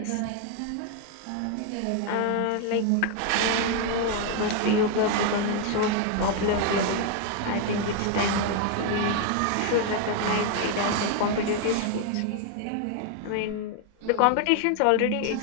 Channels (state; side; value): different; both; correlation 0.00